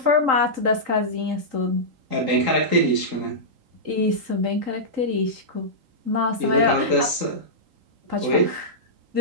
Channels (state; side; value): late; left; 3.8 ms